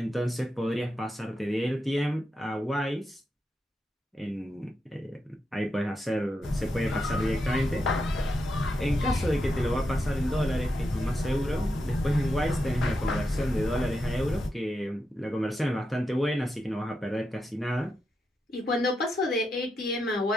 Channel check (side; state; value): both; normal; correlation 0.85